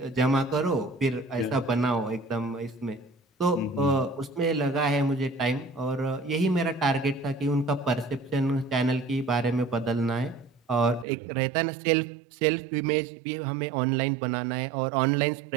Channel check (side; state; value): left; drops out; at 11.1 s